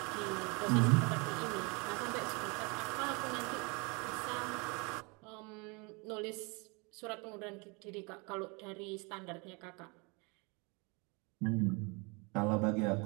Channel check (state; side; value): quieter; left; 30.1 dB